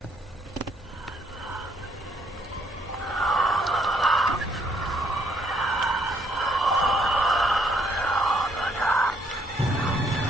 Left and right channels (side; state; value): both; normal; correlation 0.69